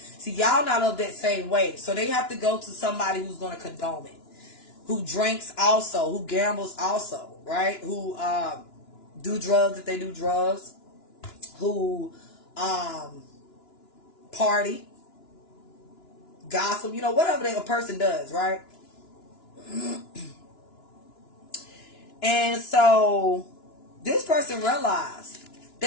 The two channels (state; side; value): late; right; 2.9 ms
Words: y'all not of that same way. So they have to go to somebody who's going to condone it. who drinks also, who gambles also, right? Who do drugs if they do drugs, who party, gossip, you know, whatever a person does, right? And so this person realized